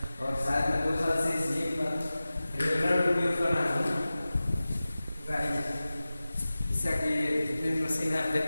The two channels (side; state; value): both; inverted; correlation -0.97